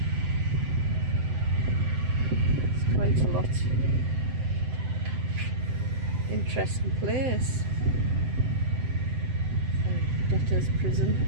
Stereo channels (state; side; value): late; left; 7.8 ms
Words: It's quite a lot. Interesting place. Debtor's prison.